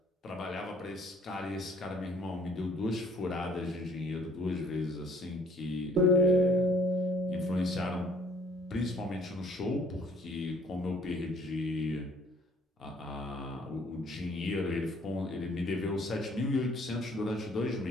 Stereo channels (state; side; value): normal; both; correlation 0.59